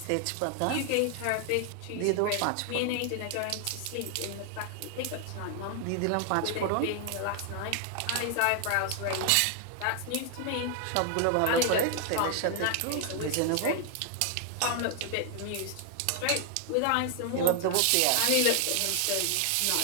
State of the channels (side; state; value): both; different; correlation 0.00